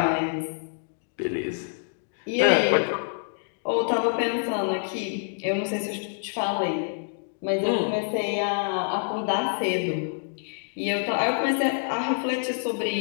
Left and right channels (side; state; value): right; silent; digital silence